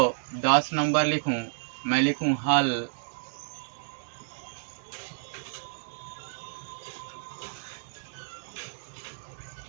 10 नंबर लिखूं, मैं लिखूं हल।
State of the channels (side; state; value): left; silent; digital silence